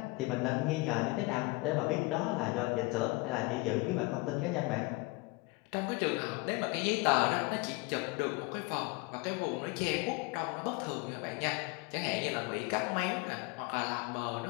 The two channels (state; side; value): quieter; right; 24.6 dB